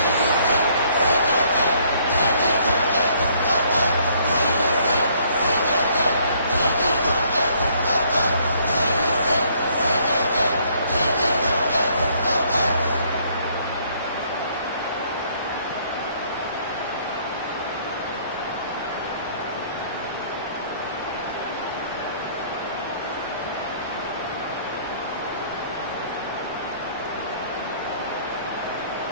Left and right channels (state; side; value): inverted; both; correlation -0.63